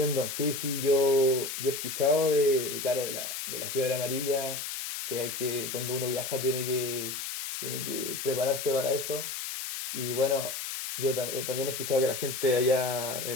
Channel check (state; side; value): noise; left; hiss, 5 dB below the sound